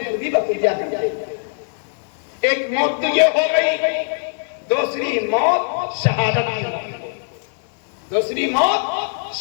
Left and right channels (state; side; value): silent; right; 65 dB below the other